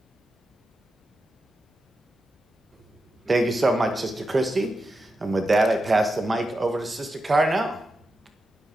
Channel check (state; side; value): normal; both; correlation 0.89